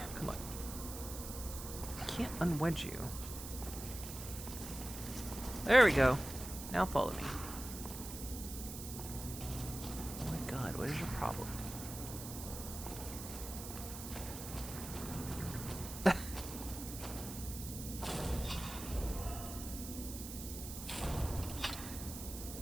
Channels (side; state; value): right; noise; hiss, 9 dB below the sound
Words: Come on. I can't unwedge you. There we go. Now follow me. Oh my god, what is your problem?